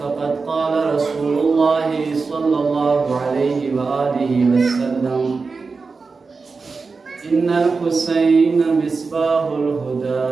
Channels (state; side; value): quieter; left; 4.5 dB